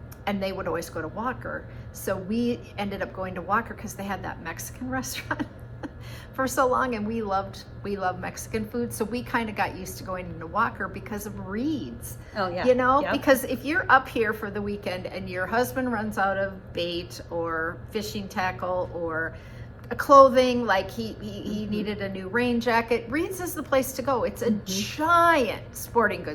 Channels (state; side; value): identical; both; correlation 1.00